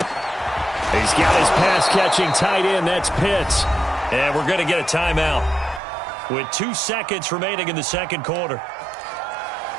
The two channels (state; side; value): drops out; left; at 5.8 s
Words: He's got his pass-catching tight end. That's Pitts. And we're going to get a timeout with 2 seconds remaining in the second quarter.